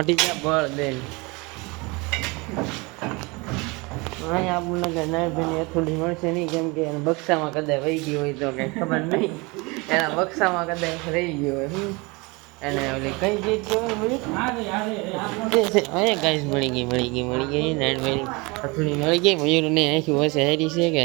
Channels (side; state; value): left; quieter; 26.6 dB